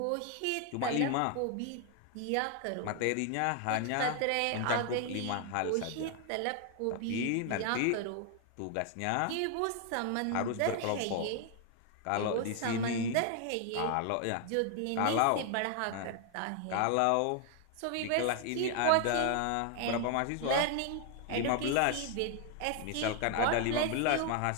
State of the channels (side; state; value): both; different; correlation 0.00